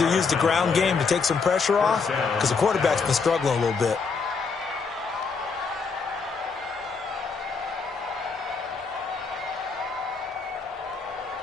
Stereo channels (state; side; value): quieter; right; 5.0 dB